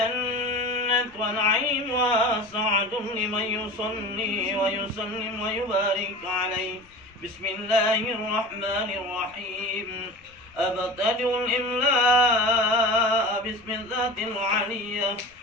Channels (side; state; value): left; noise; rumble, 29 dB below the sound